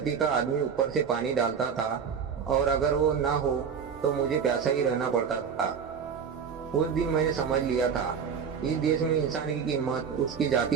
का आदमी ऊपर से पानी डालता था और अगर वो ना हो तो मुझे प्यासा ही रहना पड़ता था। उस दिन मैंने समझ लिया था, इस देश में इंसान की कीमत उसकी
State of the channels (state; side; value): quieter; left; 6.7 dB